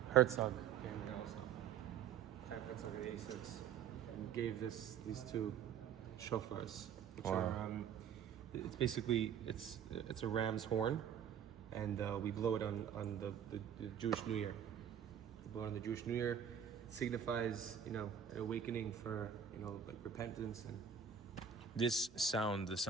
Herzog came here also. Herzog in '86, and gave these two shofars, which are it's basically it's a ram's horn, and we blow it on the Jewish New Year. We blow it on the Jewish New Year. It signifies, you know, an awakening for, you know, like repentance. And This sound, the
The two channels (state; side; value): quieter; left; 8.0 dB